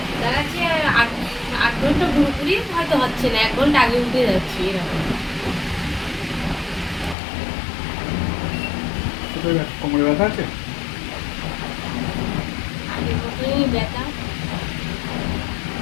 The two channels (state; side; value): drops out; right; at 7.2 s